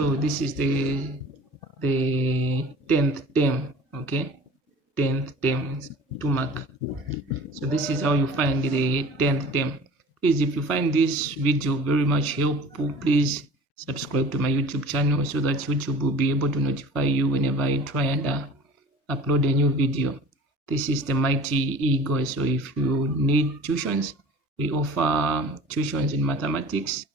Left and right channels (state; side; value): normal; both; correlation 0.42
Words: this is the 10th term. Okay, 10th term to mark. So this is how you find the 10th term. Please, if you find this video very much helpful, please subscribe to my YouTube channel so that YouTube will be able to notify you whenever I try and upload a new video. This is the Mighty Eagle. So if you need tuitions, we offer tuitions in mathematics,